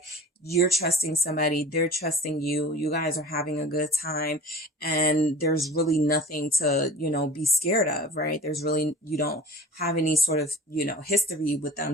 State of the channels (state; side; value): normal; both; correlation 0.40